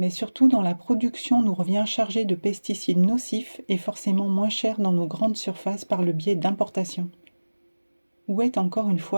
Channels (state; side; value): inverted; both; correlation -1.00